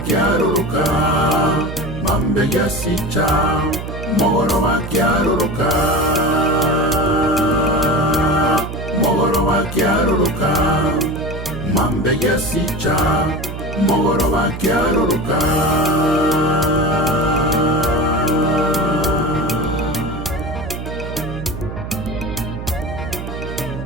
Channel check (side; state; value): right; noise; hum, 8 dB below the sound